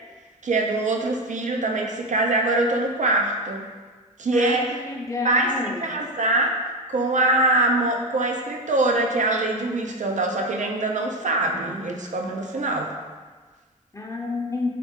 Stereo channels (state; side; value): normal; both; correlation 0.16